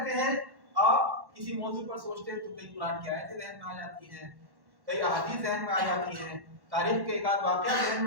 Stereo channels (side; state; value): left; late; 1.1 ms